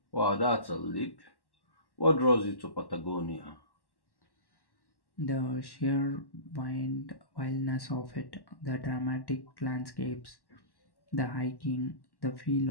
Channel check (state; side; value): late; right; 1.1 ms